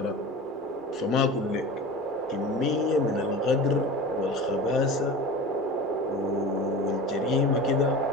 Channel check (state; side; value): normal; both; correlation 0.34